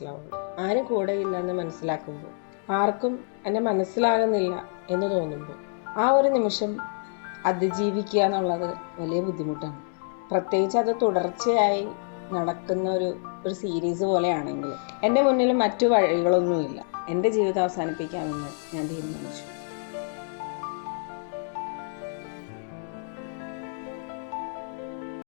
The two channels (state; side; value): silent; right; digital silence